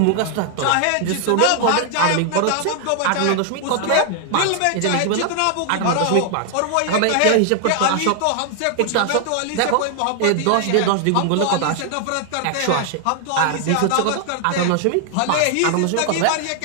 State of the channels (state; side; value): different; both; correlation 0.00